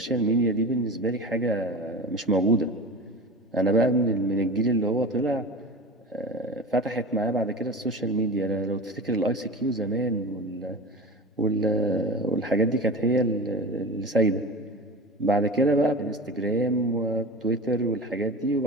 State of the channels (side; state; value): both; normal; correlation 0.31